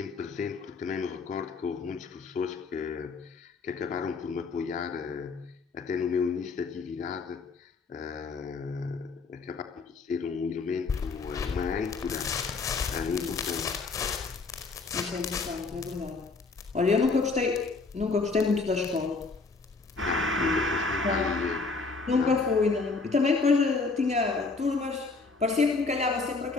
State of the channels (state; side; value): quieter; right; 4.1 dB